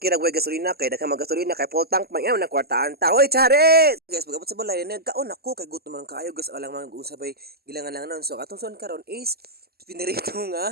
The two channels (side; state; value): left; late; 0.46 ms